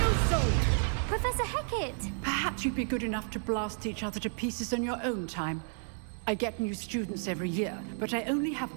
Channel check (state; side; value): silent; left; 57 dB below the other